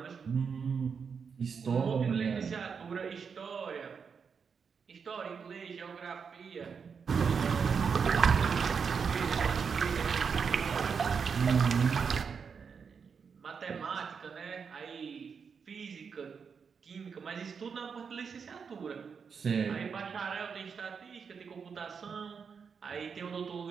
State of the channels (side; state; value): left; quieter; 6.1 dB